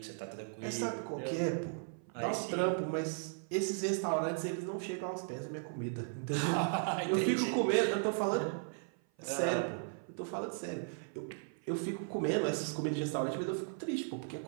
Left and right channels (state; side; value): silent; left; 54 dB below the other